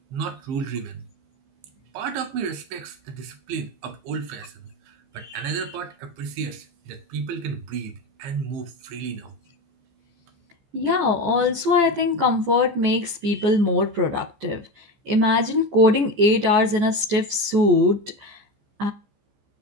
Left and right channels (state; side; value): late; left; 15 ms